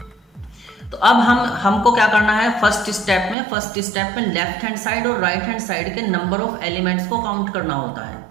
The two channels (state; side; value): drops out; left; at 3.4 s